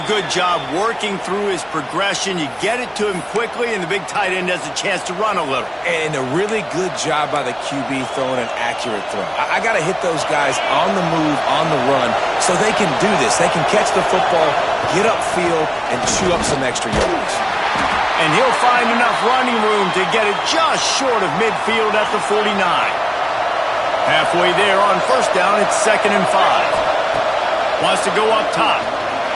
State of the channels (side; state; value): both; identical; correlation 1.00